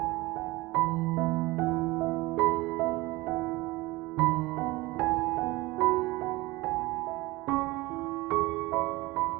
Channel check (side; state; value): left; quieter; 20.9 dB